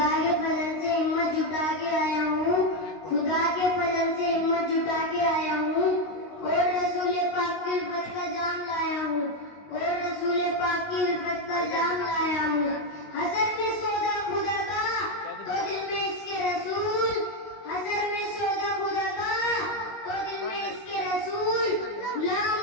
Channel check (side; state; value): right; late; 19 ms